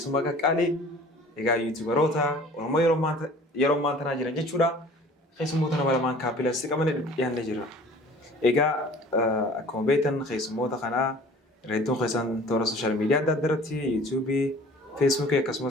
كالي إيجا يوتيوبروتا ورما يرومان تنا جران جتشورا خيسومو تنا برمان كابيلا سيكامن يان نجرا إيجا أكو بيتن خيسومو تخنا ريتون خيسان تورا سوشيال ميديا دادرتي يوتيوبي فيسبوك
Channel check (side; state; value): both; normal; correlation 0.47